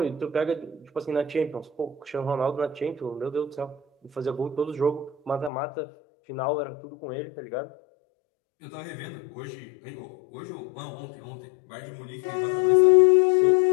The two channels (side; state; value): right; drops out; at 5.5 s